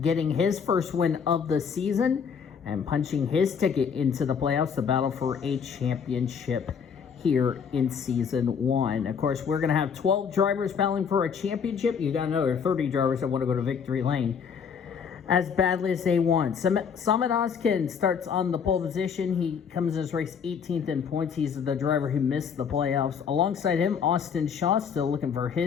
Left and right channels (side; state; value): right; quieter; 6.7 dB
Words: getting his first win of the season and punching his ticket into the playoffs, the battle for a championship here in Season 1. Of course, we're going to have 12 drivers battling for a championship. You got another 30 drivers that want to go to victory lane as badly as they want. Samit Oskin starts on the pole position. He comes in his race 18th in points. He's the driver who missed the playoffs. Alongside him, Austin Shaw still looking for